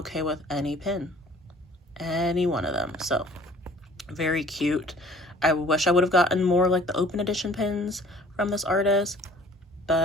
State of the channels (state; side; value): normal; both; correlation 0.51